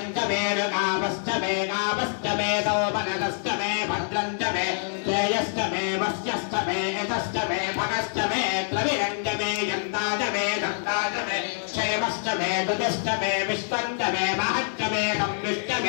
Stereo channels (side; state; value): right; silent; digital silence